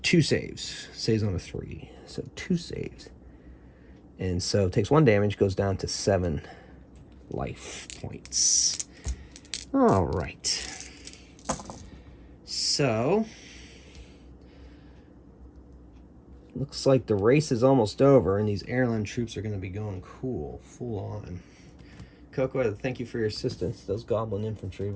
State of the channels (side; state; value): both; identical; correlation 1.00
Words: saves. Saves on a 3. So 2 saves. And so it takes 1 damage, goes down to 7 life points. All right. So looks like the race is almost over, and these airline troops are going to be going cool, full on. Coco, thank you for your assistance. Those goblin infantry